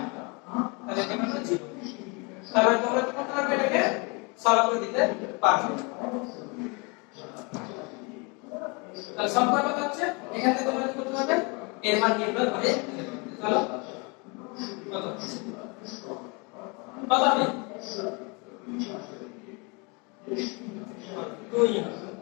তাহলে এটা হলো 0 তাহলে তোমরা কি করতে পারবে এটাকে সলভ করে দিতে পারবে তাহলে সংখ্যা কত হচ্ছে এখান থেকে তোমরা কি করতে পারবে এর মান নির্ণয় করে চলো কত কত হবে 2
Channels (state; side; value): quieter; right; 30.5 dB